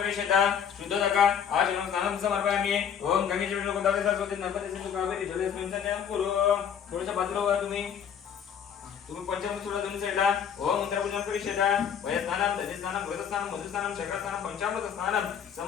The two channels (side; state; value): right; quieter; 8.0 dB